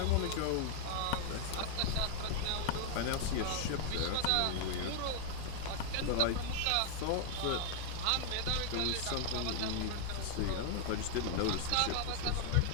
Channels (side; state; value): both; different; correlation 0.00